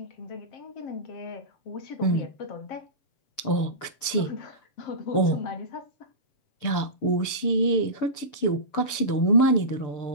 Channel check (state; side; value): late; right; 6.9 ms